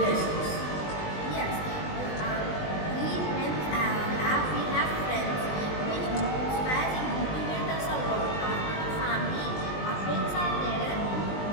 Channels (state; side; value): late; right; 20 ms